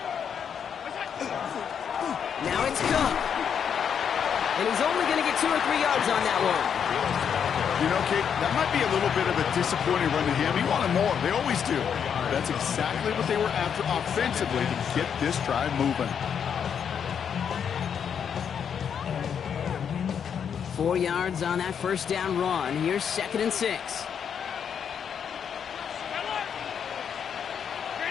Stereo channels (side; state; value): right; quieter; 7.7 dB